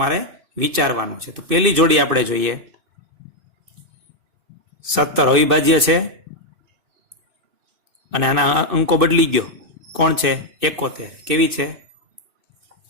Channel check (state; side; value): late; left; 2.6 ms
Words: વિચારવાનું છે. તો પહેલી જોડી આપણે જોઈએ. 17 અવિભાજ્ય છે અને આના અંકો બદલી ગયો. કોણ છે? 71. કેવી છે?